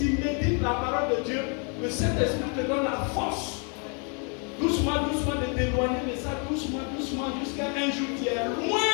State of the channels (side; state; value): right; quieter; 38.1 dB